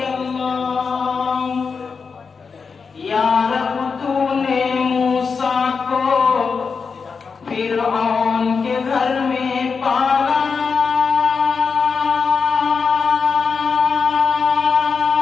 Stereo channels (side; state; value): right; quieter; 5.3 dB